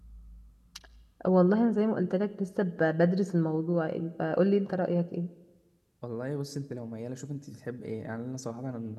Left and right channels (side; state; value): both; identical; correlation 1.00